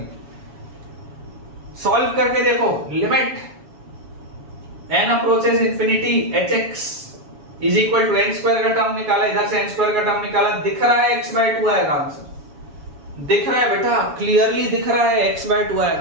सॉल्व करके देखो, limit n approaches infinity hx is equal to n square का टर्म निकाला, इधर से n स्क्वायर का टर्म निकाला, दिख रहा है x/2 आएगा आंसर, दिख रहा है बेटा, क्लियरली दिख रहा है x/2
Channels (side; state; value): left; late; 7.1 ms